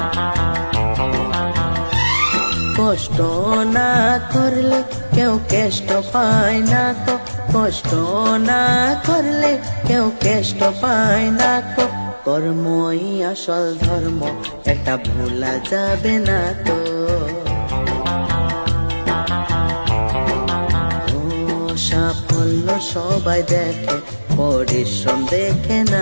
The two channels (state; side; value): inverted; both; correlation -1.00